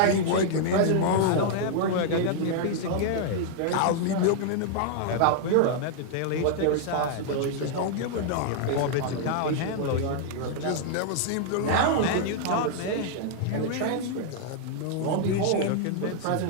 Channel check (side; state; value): both; different; correlation -0.01